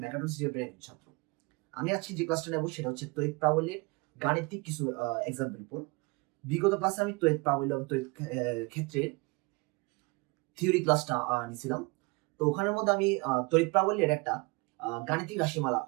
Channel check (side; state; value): left; quieter; 27.3 dB